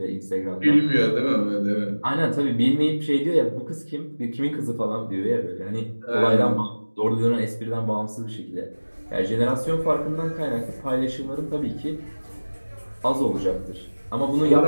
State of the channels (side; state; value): both; inverted; correlation -1.00